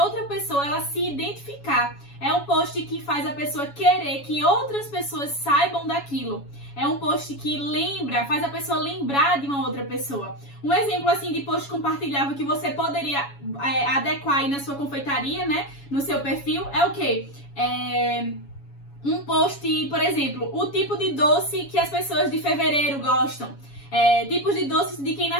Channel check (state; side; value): late; right; 7.2 ms